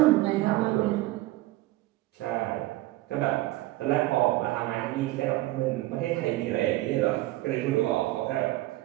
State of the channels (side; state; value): left; quieter; 17.7 dB